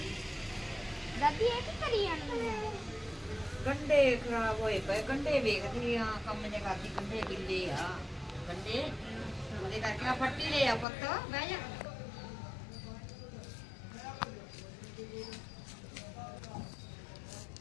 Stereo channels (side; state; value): right; drops out; at 10.9 s